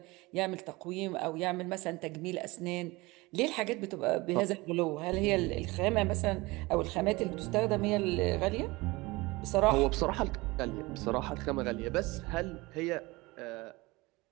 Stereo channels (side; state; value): left; quieter; 22.5 dB